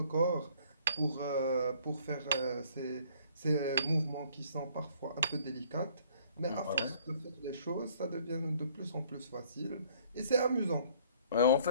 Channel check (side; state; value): both; inverted; correlation -0.59